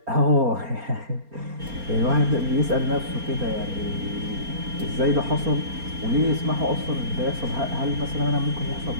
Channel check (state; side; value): late; left; 4.3 ms